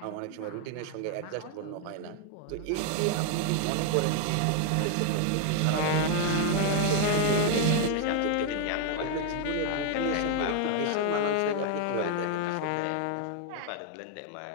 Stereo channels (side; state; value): both; different; correlation 0.00